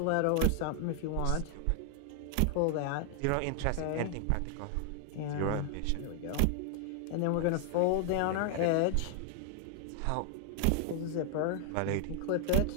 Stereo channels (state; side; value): different; both; correlation 0.00